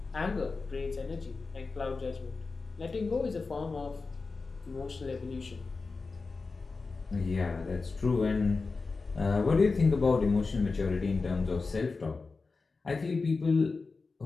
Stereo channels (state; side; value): quieter; right; 4.1 dB